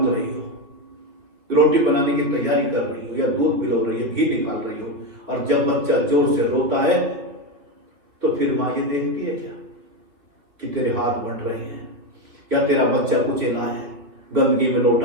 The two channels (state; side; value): late; left; 3.3 ms